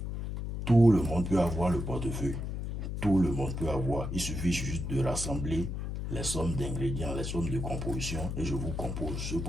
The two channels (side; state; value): left; noise; hum, 4 dB below the sound